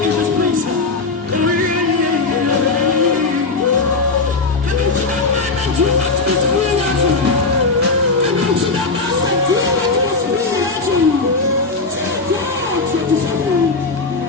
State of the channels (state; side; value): quieter; right; 3.9 dB